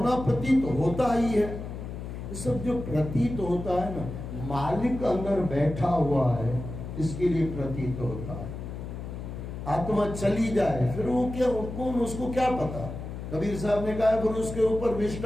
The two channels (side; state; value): left; noise; hum, 8 dB below the sound